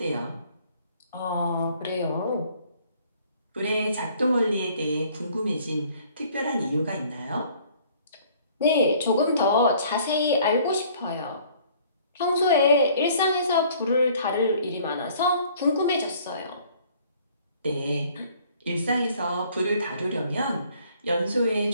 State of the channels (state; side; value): inverted; both; correlation -0.57